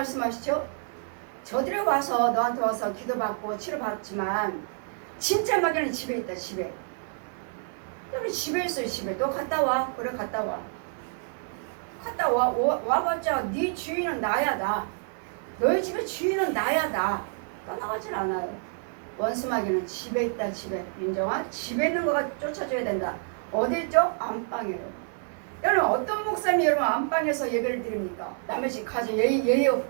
저들이 와서 너한테 와서 기도받고 치료받지만 진짜 마귀는 집에 있다. 집에. 여러분 집에 있어요. 집에. 너 갔다 와. 그래 갔다 와. 갔다 와봤자 네 주인은 나야 나. 너희 집의 주인은 나야 나. 떠나가질 않아요. 원수 마귀는 집에 있다. 집에. 윤정아 집에 있는 거가 쫓아줘야 된다. 어디 있죠? 안방이에요. 여러분 어떤 목사님이 여러분 안방에서 예배를 드립니까? 남의 집 가서 예의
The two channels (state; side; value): silent; left; 59 dB below the other